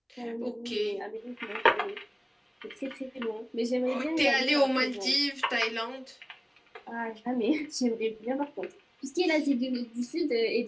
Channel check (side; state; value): both; identical; correlation 1.00